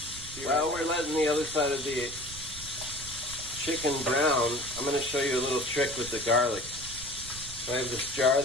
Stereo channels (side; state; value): right; noise; rumble, 15 dB below the sound